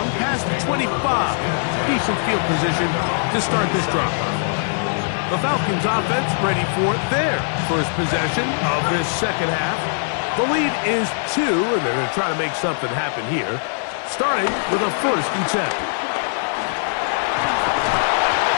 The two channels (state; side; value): silent; right; digital silence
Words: past the 25. Decent field position to start this drive. The Falcons offense ready for their first possession of this second half. The lead is 2, and they're going to try to make something happen here, starting with a first and 10.